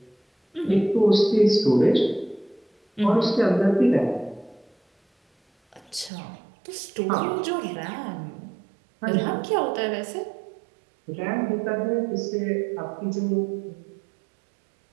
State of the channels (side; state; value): left; drops out; at 6.1 s